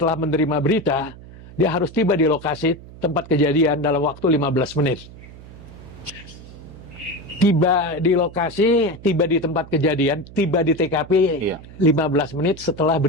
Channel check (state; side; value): noise; right; hum, 18 dB below the sound